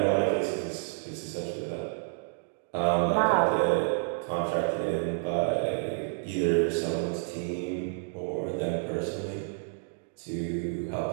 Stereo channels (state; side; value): silent; left; digital silence